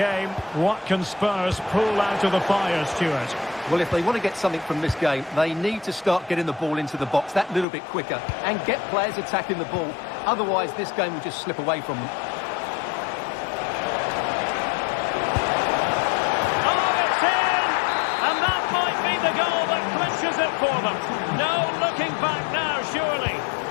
what can Spurs pull out of the fire, Stuart? Well, if they want to get something from this game, they need to start getting the ball into the box that little bit quicker and get players attacking the ball. Otherwise, this game will just slip away from them. Oh, it's in! And that might be the goal that clinches it for them. No looking back now, surely.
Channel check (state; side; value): drops out; right; at 7.7 s